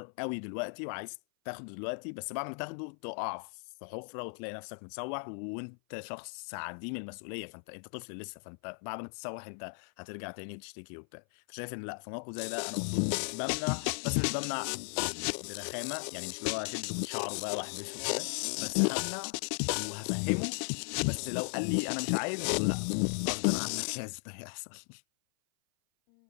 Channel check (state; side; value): silent; right; 54 dB below the other